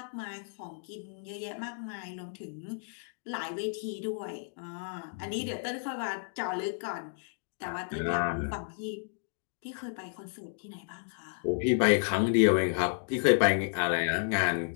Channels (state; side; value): silent; right; digital silence